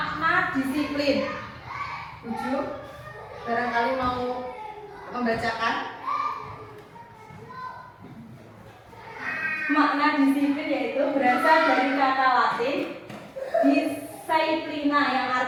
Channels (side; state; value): both; identical; correlation 1.00